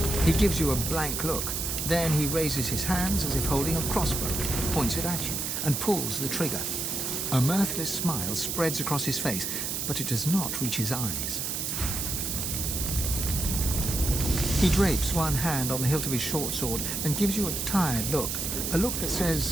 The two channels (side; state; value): right; noise; hiss, 2 dB below the sound